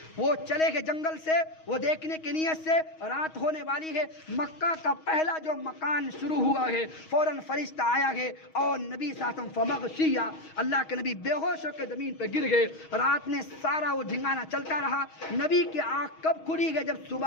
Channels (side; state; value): right; late; 6.3 ms